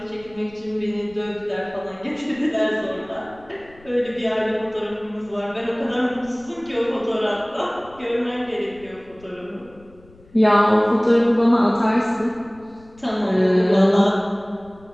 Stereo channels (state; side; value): noise; left; rumble, 25 dB below the sound